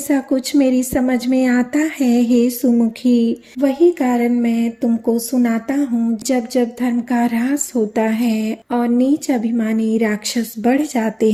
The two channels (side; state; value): both; identical; correlation 1.00